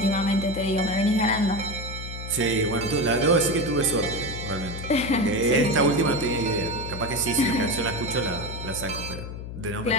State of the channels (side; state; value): left; noise; hum, 9 dB below the sound